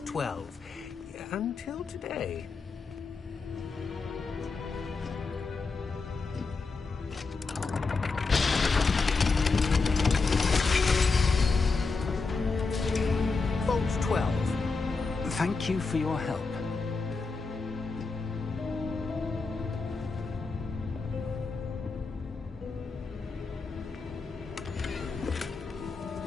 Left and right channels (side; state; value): right; quieter; 4.3 dB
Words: 12 until today. Thank you for your help.